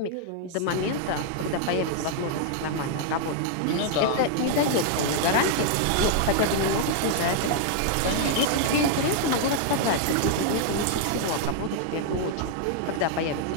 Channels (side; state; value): both; different; correlation 0.00